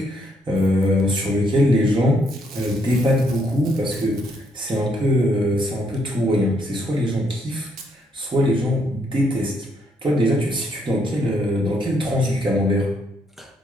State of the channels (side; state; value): both; normal; correlation 0.73